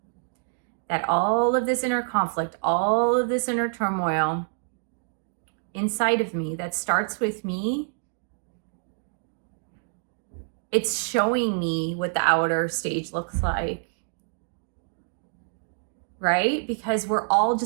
that all of this inner conflict, all of this inner turmoil inside of me that starts with me, it's showing me what the outer stage looks like, right? Because we're all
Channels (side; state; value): left; silent; digital silence